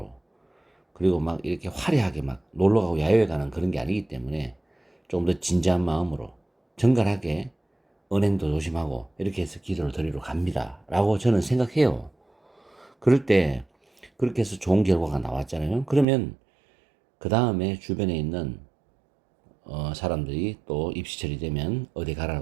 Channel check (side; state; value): left; drops out; at 16.1 s